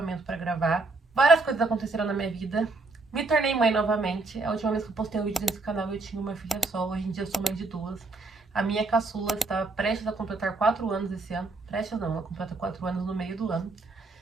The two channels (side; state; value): left; quieter; 3.5 dB